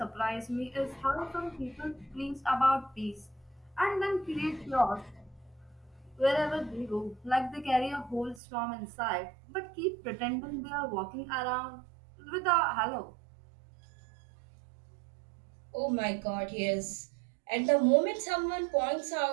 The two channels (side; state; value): left; drops out; at 8.4 s